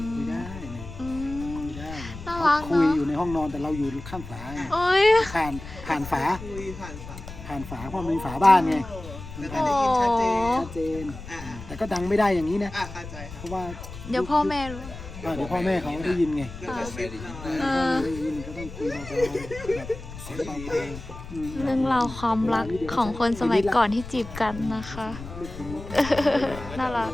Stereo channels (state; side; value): noise; left; rumble, 12 dB below the sound